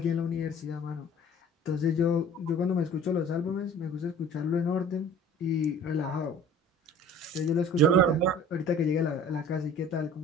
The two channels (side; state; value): both; normal; correlation 0.46